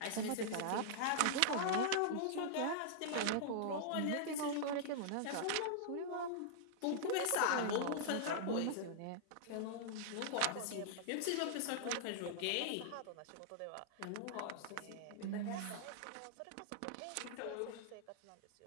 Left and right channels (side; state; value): both; different; correlation -0.01